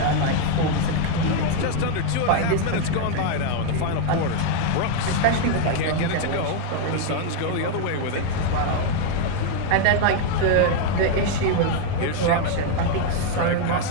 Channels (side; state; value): both; different; correlation 0.00